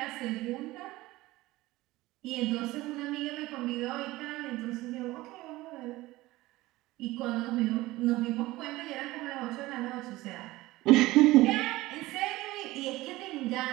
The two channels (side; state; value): left; quieter; 18.6 dB